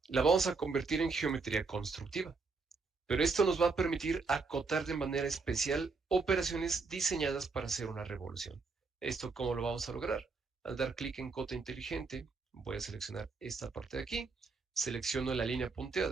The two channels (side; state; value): left; quieter; 4.3 dB